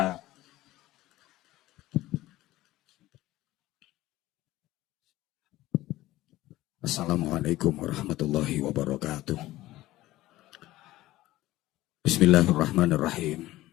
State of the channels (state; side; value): quieter; right; 16.6 dB